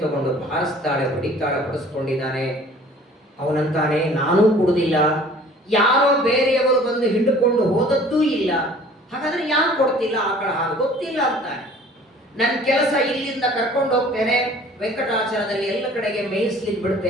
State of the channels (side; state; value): both; normal; correlation 0.50